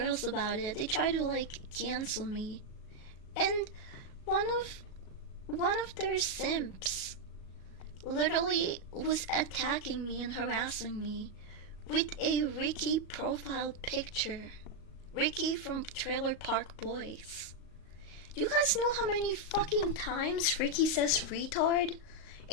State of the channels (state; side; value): late; right; 37 ms